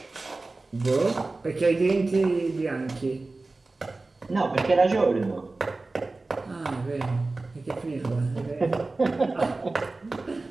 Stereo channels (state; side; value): quieter; left; 3.3 dB